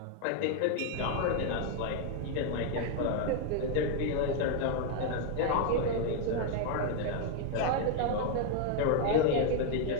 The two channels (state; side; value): different; both; correlation 0.00